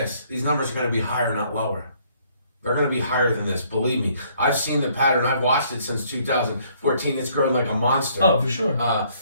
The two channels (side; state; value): both; inverted; correlation -0.64